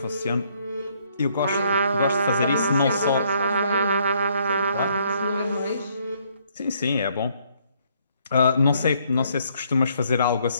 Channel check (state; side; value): inverted; both; correlation -0.68